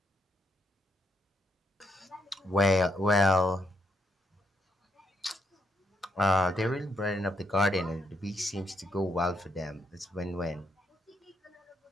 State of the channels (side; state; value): both; normal; correlation 0.77